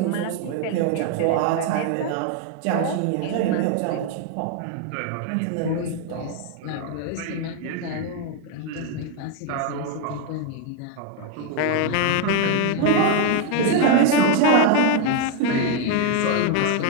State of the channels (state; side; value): different; both; correlation 0.01